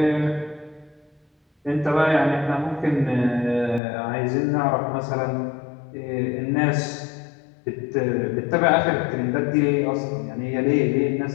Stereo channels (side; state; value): right; drops out; at 3.8 s